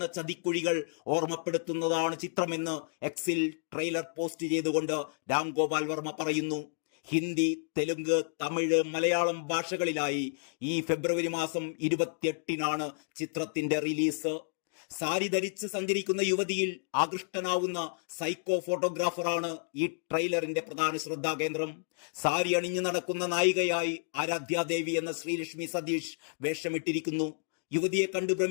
ചതിക്കുഴികൾ ഓർമ്മപ്പെടുത്തുന്നതാണ് ചിത്രമെന്ന് എക്സിൽ ട്രെയിലർ പോസ്റ്റ് ചെയ്തുകൊണ്ട് രാം ഗോപാൽ വർമ്മ പറയുന്നു. ഹിന്ദി, തെലുങ്ക്, തമിഴ്, മലയാളം ഭാഷകളിലായി ഈ ഫെബ്രുവരി മാസം 28-നാണ് ചിത്രത്തിന്റെ റിലീസ്. സാരി ധരിച്ച് സഞ്ചരിക്കുന്ന യുവതിയിൽ ആകൃഷ്ടനാവുന്ന സൈക്കോ ഫോട്ടോഗ്രാഫറാണ് ഈ ട്രെയിലറിന്റെ പ്രധാന ശ്രദ്ധാകേന്ദ്രം. സാരി അണിഞ്ഞു നടക്കുന്ന നായികയായി ആരാധ്യാദേവി എന്ന ശ്രീലക്ഷ്മി സതീഷ് വേഷമിട്ടിരിക്കുന്നു. യുവതിയെ കണ്ടു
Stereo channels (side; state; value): right; silent; digital silence